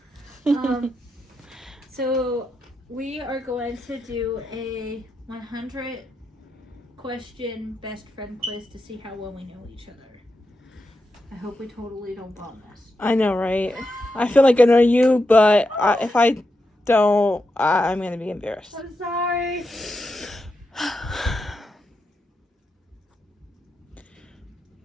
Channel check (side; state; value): both; normal; correlation 0.86